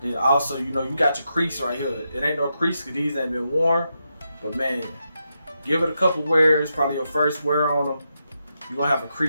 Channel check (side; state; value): both; inverted; correlation -0.85